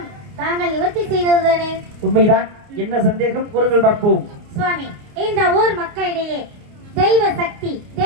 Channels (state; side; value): late; left; 29 ms